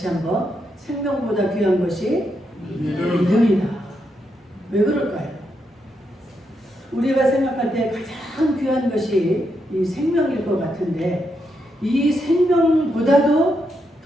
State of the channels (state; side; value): normal; both; correlation 0.82